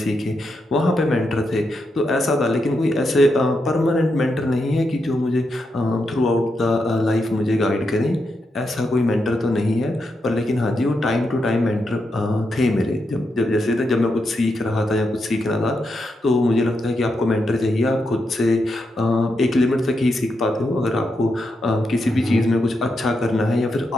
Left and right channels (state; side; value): normal; both; correlation 0.84